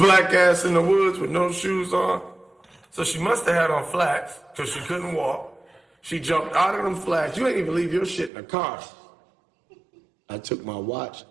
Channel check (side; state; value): left; drops out; at 8.3 s